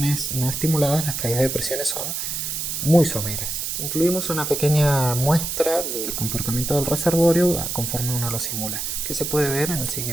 no estimuladas las caídas de presiones son muy someras. Incluimos una pequeña muestra del comportamiento del reservorio conforme uno lo simula, que se puede ver en el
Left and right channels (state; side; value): noise; right; hiss, 3 dB below the sound